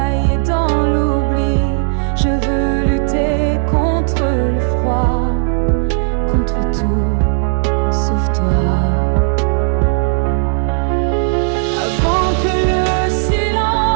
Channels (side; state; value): left; silent; 70 dB below the other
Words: dans l'oubli. Je veux lutter contre le froid, contre tout sauf toi. Avant que le